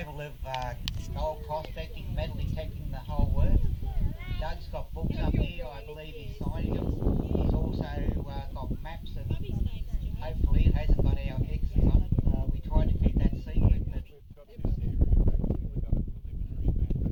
of gold prospecting, metal detecting, the whole works. Doug's got books up here, I believe he's signing them. He's also got maps, and hopefully it hasn't got our X's on it. We tried to keep that secret, but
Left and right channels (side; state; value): both; identical; correlation 1.00